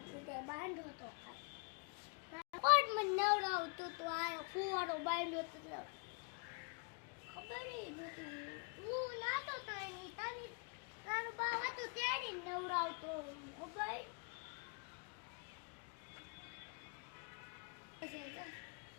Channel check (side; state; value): right; quieter; 36.2 dB